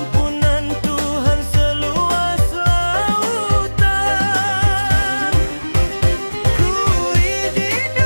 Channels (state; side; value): inverted; both; correlation -1.00